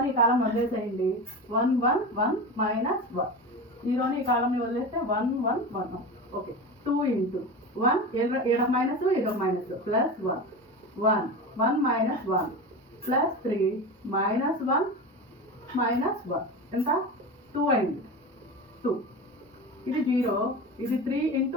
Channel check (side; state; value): both; normal; correlation 0.26